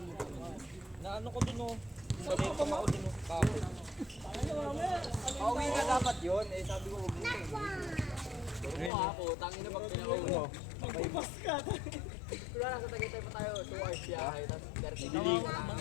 Naano ko dun oh. Sabi ko ako dun oh. Kape. Pauwi na dapat yun. Eh sabi ko huwag dito. Oo ako, tangin na pag pinakauna. Magpapas ka. Wala na sa Tagaytay pa tayo, 2 hours biyahe, tapos 30 minutes.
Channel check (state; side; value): drops out; right; at 8.9 s